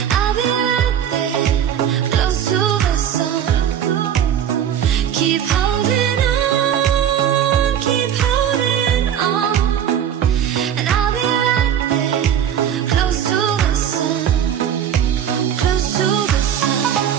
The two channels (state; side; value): quieter; left; 9.4 dB